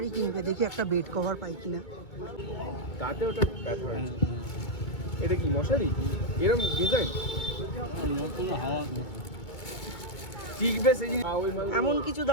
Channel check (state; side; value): late; right; 2.2 ms